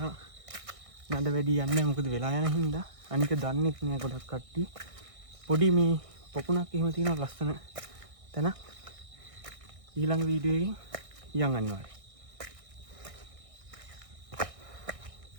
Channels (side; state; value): left; late; 1.6 ms